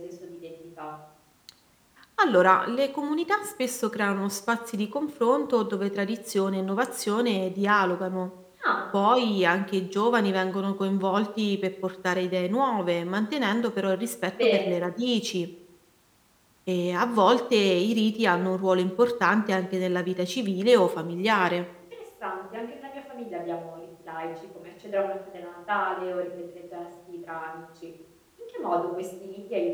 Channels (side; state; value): both; identical; correlation 1.00